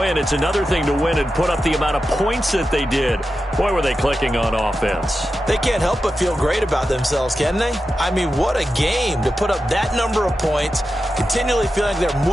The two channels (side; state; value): both; normal; correlation 0.91